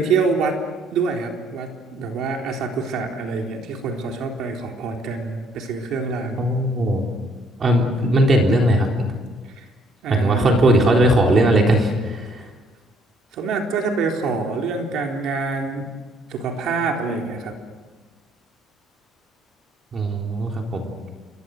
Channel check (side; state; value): both; normal; correlation 0.65